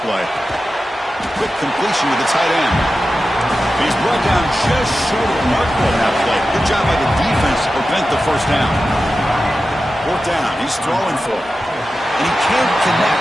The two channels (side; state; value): both; normal; correlation 0.93